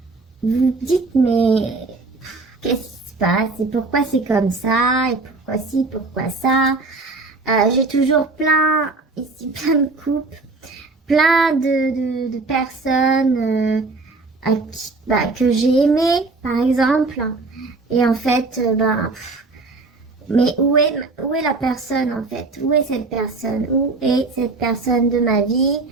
vous dites mais qu'est-ce qui se passe et pourquoi c'est comme ça et pourquoi ci, pourquoi ça. J'ai toujours plein de couples, plein de personnes que j'ai aimées par exemple. Et en fait, mais où est la personne en fait? Où est cette personne? Où est cette personne de ma vie?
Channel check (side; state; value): left; quieter; 3.7 dB